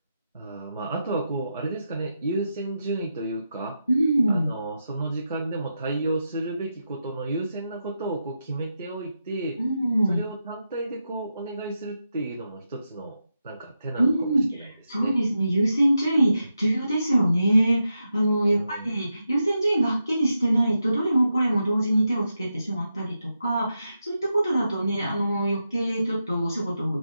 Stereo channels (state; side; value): inverted; both; correlation -0.87